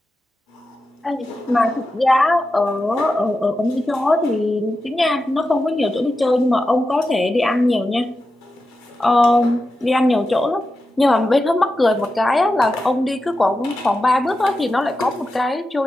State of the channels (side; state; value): both; normal; correlation 0.90